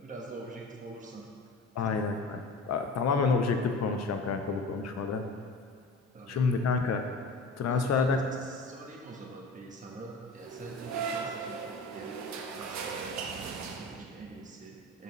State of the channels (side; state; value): right; quieter; 3.1 dB